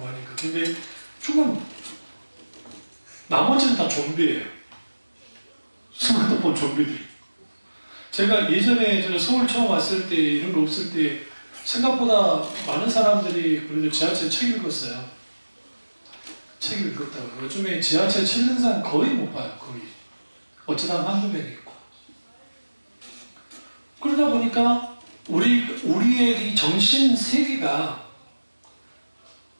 근데 나머지는 다 좀비예요. 스마트폰 좀비들. 제가 예전에 제가 서울 처음 왔을 때 이런 거 없을 때 생각보다 많은 사람들이 그래도 지하철 책 읽었어요. 책 읽었다고. 요즘에 지하철 책 읽는 사람 거의 못 봐요. 거의. 어쩌다 한두 명 있고. 그러다 보니까 우리의 이 정신 세계가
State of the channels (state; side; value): inverted; both; correlation -1.00